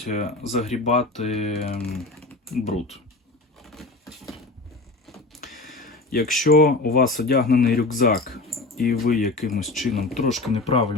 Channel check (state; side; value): quieter; right; 3.2 dB